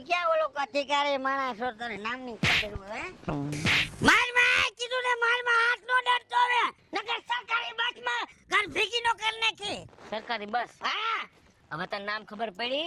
ક્યાં ઓલો અધિકારી માણસ છો તને નામની ખબર હોય માર માં કીધું ને માર માં હાથ નો ડરતો હવે નકર સરકારી બસમાં ઘર ભીગી નો કર નાખી સરકારી બસ હા હવે તને નામ ખબર પડી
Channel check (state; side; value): identical; both; correlation 1.00